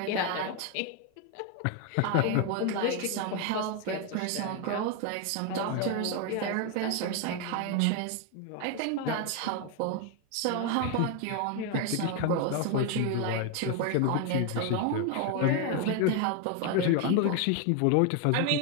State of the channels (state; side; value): different; both; correlation 0.01